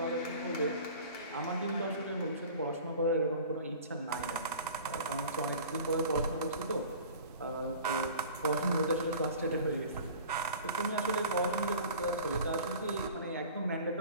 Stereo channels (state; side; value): inverted; both; correlation -0.42